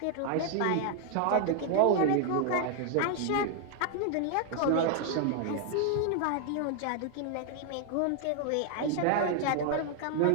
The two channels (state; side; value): different; both; correlation 0.00